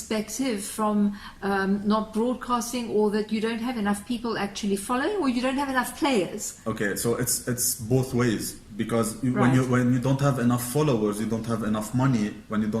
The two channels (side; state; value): both; identical; correlation 1.00